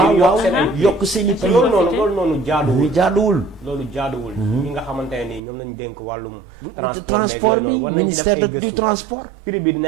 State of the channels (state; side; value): drops out; left; at 5.4 s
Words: yokk seen i prix loolu noonu jaaduwul loolu jaaduwul ñi nga xamante ne nii ñoom lañu dénk wàllum transport bi ministère du transport prix bi di